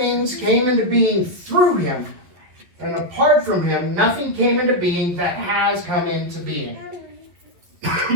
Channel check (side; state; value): left; late; 11 ms